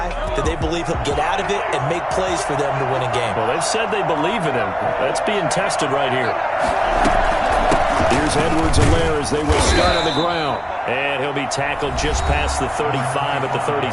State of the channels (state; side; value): identical; both; correlation 1.00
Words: that they believe he'll get out of it and make plays for them to win a game? Well, they've said they believe in him. That's being tested right here. Here's Edwards-Helaire as they will start on the ground. And he'll be tackled just past the 35 at the